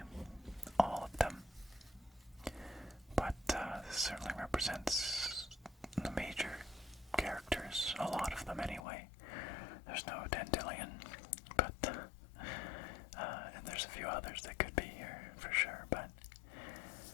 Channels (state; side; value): drops out; right; at 8.8 s